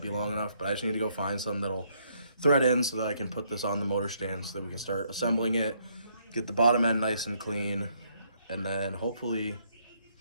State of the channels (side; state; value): both; inverted; correlation -0.71